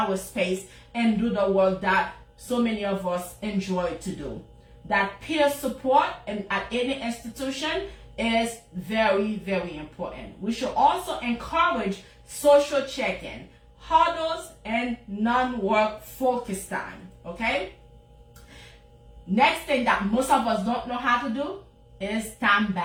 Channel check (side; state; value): both; identical; correlation 1.00